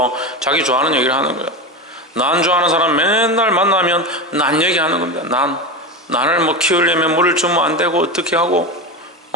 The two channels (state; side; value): normal; both; correlation 0.21